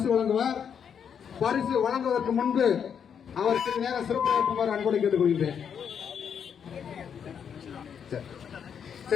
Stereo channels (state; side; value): quieter; right; 7.6 dB